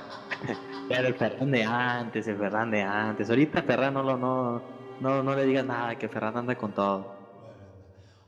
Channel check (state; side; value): identical; both; correlation 1.00